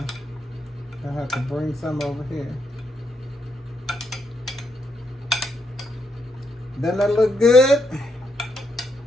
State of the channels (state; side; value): normal; both; correlation 0.78